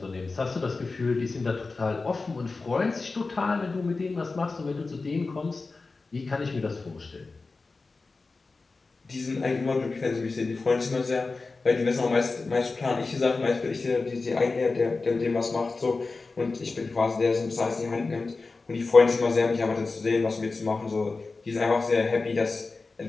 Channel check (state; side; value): quieter; right; 3.9 dB